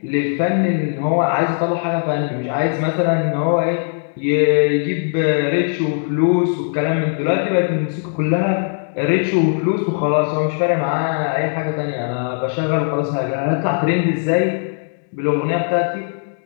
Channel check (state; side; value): silent; right; 66 dB below the other